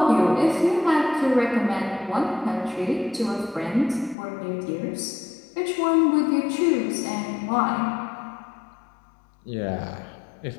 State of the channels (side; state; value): right; drops out; at 4.2 s